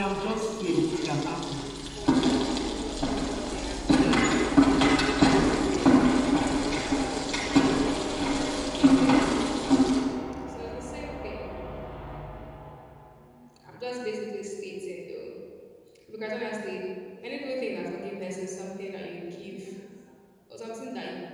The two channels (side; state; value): both; identical; correlation 1.00